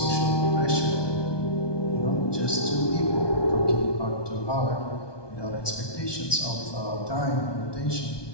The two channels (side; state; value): right; late; 1.2 ms